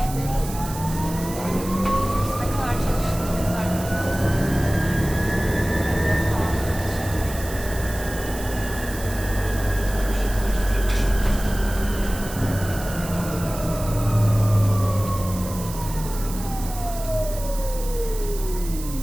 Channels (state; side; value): noise; right; hiss, 12 dB below the sound